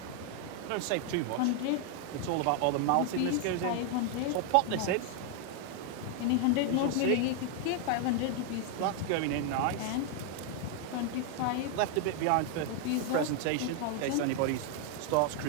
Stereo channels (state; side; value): different; both; correlation 0.00